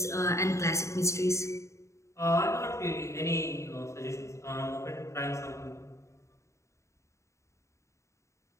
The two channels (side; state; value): right; late; 0.14 ms